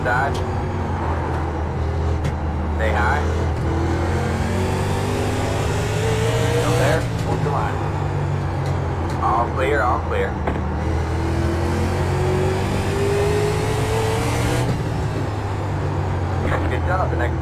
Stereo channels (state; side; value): identical; both; correlation 1.00